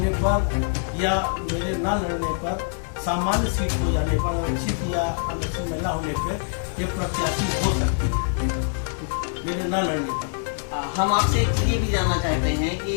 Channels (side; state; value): right; silent; 62 dB below the other